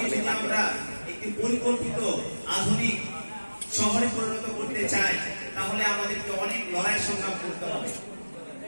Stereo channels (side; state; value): both; inverted; correlation -1.00